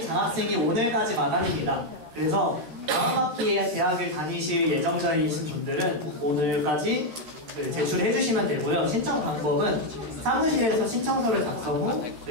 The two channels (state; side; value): late; left; 13 ms